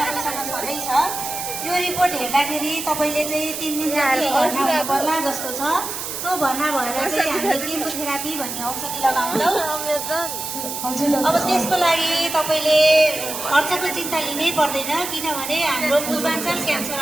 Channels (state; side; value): noise; right; hiss, 6 dB below the sound